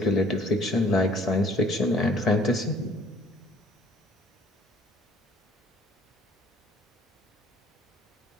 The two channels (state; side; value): normal; both; correlation 0.56